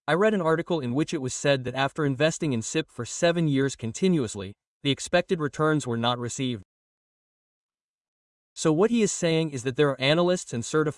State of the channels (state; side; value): identical; both; correlation 1.00